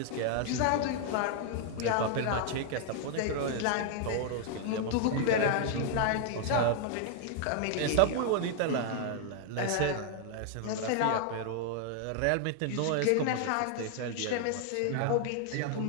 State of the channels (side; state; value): both; different; correlation 0.00